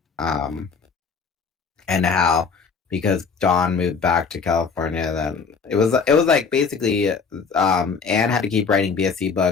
And how because Dawn moved back to California, then it was like basically Anne had to keep writing BSC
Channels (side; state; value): right; quieter; 5.4 dB